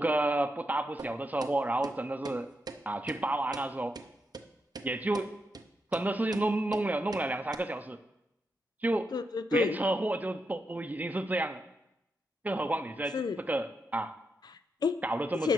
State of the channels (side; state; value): both; normal; correlation 0.83